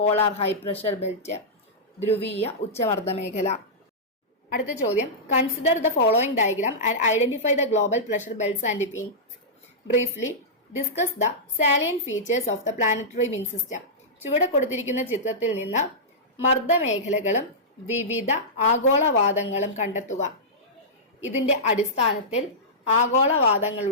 high pressure belt, ധ്രുവീയ ഉച്ചമർദ്ദ മേഖല. അടുത്ത ചോദ്യം, consider the following diagram and identify the global pressure belts and wind. Briefly discuss the salient features of the planetary wind system. ചുവടെ കൊടുത്തിരിക്കുന്ന ചിത്രത്തിൽ നിന്ന് മർദ്ദമേഖലകളും വിവിധ ആഗോളവാദങ്ങളും കണ്ടെത്തുക. ഇതിന്റെ അടിസ്ഥാനത്തിൽ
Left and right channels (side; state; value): both; normal; correlation -0.13